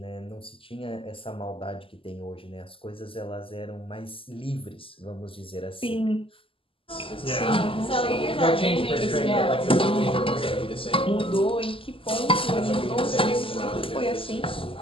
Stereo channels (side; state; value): right; late; 0.26 ms